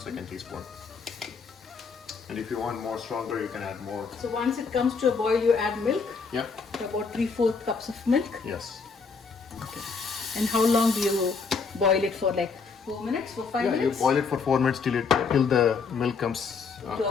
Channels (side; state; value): right; quieter; 5.1 dB